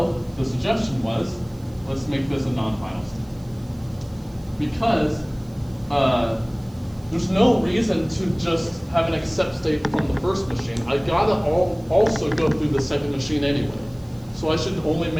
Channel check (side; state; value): right; noise; hiss, 28 dB below the sound